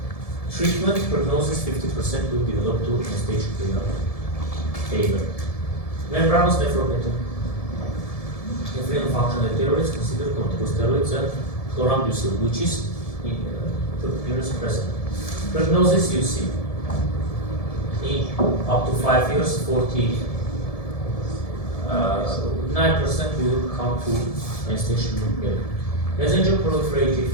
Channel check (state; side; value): late; right; 1.7 ms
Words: treatment. Prognosis 50% will develop to end-stage renal failure. Membranous nephropathy. If renal functional steroids, consider corticosteroids and chlorambucil, which is immunosuppressant. Prognosis you see in up to 5 years, 49% will come to end-stage renal failure. Mesangial proliferative